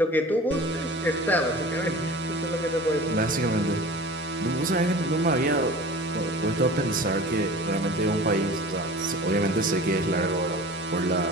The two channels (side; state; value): both; normal; correlation 0.39